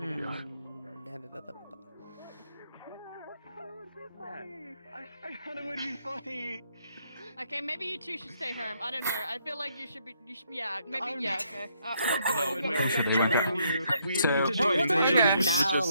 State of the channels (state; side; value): inverted; both; correlation -0.72